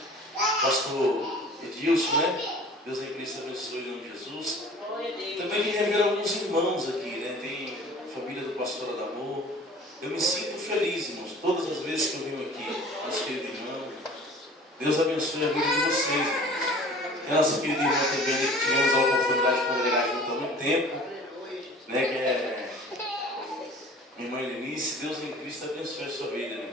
Pastor Edilson, Deus em Cristo abençoe em nome de Jesus. Também me revelam alguns irmãos aqui, Tem a família do pastor Adamor. Eu me sinto feliz, irmãos, todas as vezes que eu venho aqui, nosso querido irmão. Deus abençoe a vida de vocês, irmãos. E a nossa querida irmã também, que tivemos a oportunidade de congregar junto há muito tempo, que é minha irmã Lenice. Deus em Cristo abençoe a sua vida,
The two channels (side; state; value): both; normal; correlation 0.45